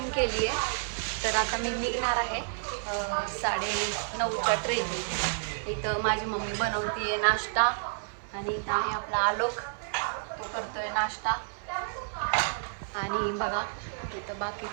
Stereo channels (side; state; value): left; silent; 58 dB below the other